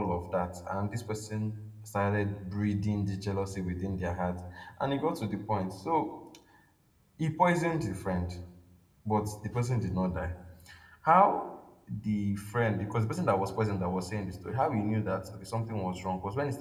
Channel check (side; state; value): both; identical; correlation 1.00